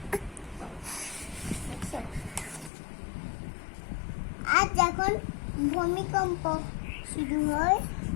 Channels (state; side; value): drops out; right; at 2.7 s